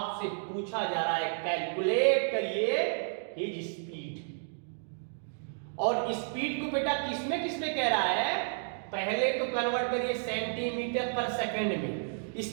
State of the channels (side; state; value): left; silent; digital silence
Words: पूछा जा रहा है कैलकुलेट करिए हिज स्पीड। और स्पीड को बेटा किसमें किसमें कह रहा है, पहले तो कन्वर्ट करिए सेंटीमीटर पर सेकंड में।